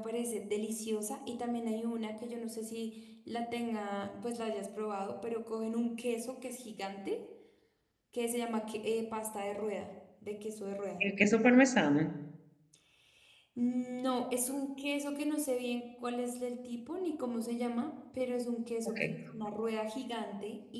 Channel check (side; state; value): both; identical; correlation 1.00